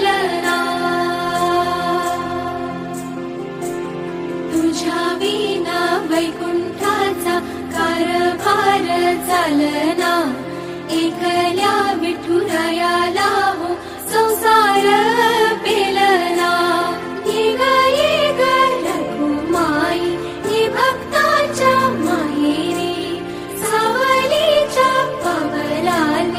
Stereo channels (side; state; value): both; identical; correlation 1.00